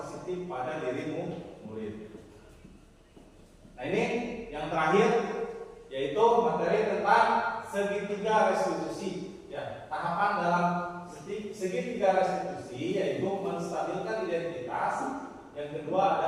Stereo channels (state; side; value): identical; both; correlation 1.00